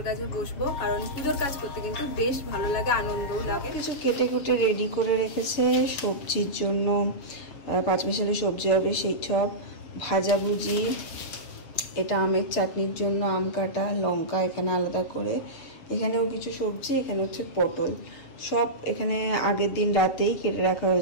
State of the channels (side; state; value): right; late; 6.9 ms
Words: কাজে বসবো, কারণ পুজোর কাজ করতে কিন্তু বেশ ভালো লাগে, আনন্দও লাগে। কিছু কেটে কুটে রেডি করে রেখেছে সবজির জন্য, পাঁচমিশালি সবজি হবে সেই সব, ভাজাভুজি, এটা আমের চাটনির জন্য আম কাটা, লঙ্কা এখানে আলাদা করে, এখানেও কিছু সবজি, এখানে হচ্ছে পটল, সব এখানে আগের দিন রাতেই কেটে রাখা